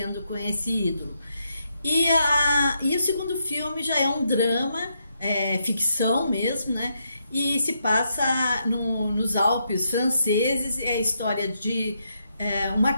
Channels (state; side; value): inverted; both; correlation -0.79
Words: com esse ídolo. E o segundo filme já é um drama, ficção mesmo, né? E se passa nos Alpes franceses, é a história de